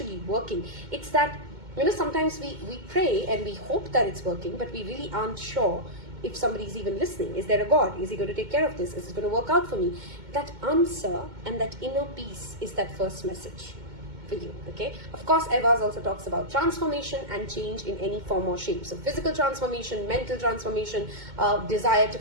working. It's that, sometimes we pray and we hope that it's working, but we really aren't sure if somebody's even listening. Is there a God? Is he going to take care of this? Is it going to work out for me? That answer and that inner peace is that first message for you. Okay, of course, Evas also talks about transformation and change in any form or shape. So physical transformation, mental transformation, desire to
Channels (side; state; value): left; late; 2.2 ms